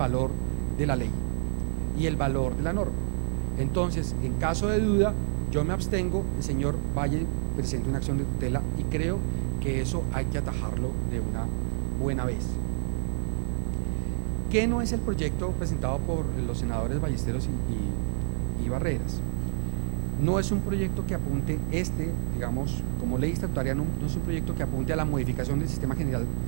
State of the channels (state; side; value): silent; left; digital silence